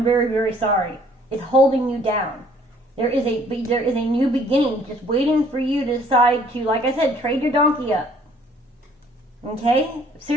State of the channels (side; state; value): both; normal; correlation 0.59